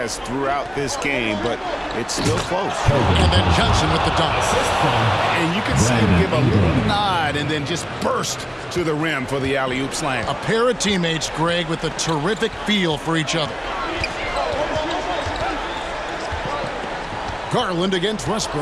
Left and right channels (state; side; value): identical; both; correlation 1.00